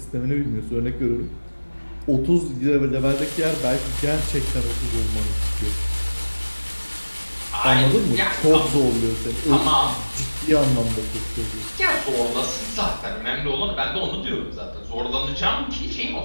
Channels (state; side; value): inverted; both; correlation -1.00